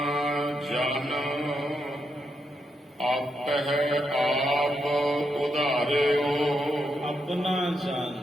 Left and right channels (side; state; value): both; normal; correlation 0.82